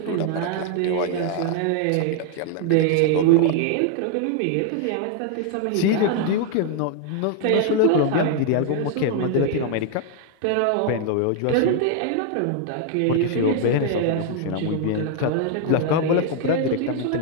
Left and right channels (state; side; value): different; both; correlation 0.00